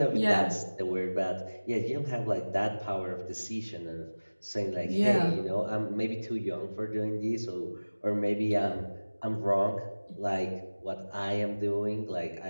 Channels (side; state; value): both; inverted; correlation -1.00